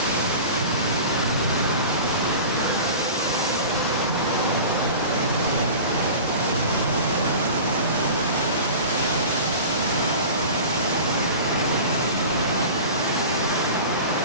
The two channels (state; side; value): inverted; both; correlation -0.36